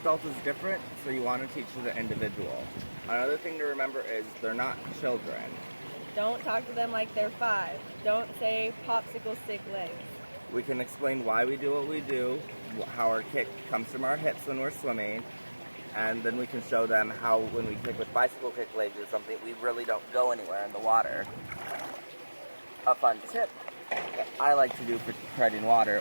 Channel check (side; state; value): both; inverted; correlation -1.00